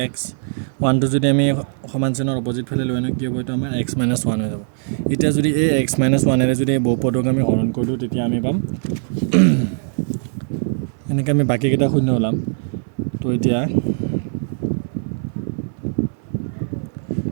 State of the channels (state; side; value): silent; left; 59 dB below the other